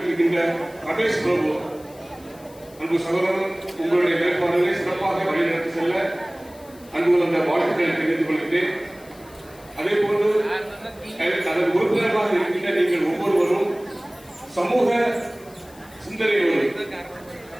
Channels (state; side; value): noise; left; hiss, 24 dB below the sound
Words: ரமேஷ் பிரபு அன்பு சகோதரன், உங்களுடைய வேட்பாளர்களை சிறப்பாக வழிநடத்தி செல்ல அன்பு வந்த வாழ்த்துக்களை தெரிவித்துக் கொள்கிறேன். அதே போன்று அதன் உறுப்பினராக இருக்கின்ற நீங்கள் ஒவ்வொருவரும் சமூக சிந்தனையோடு,